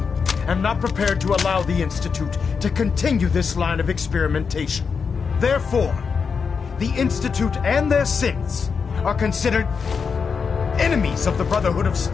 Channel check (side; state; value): right; quieter; 5.7 dB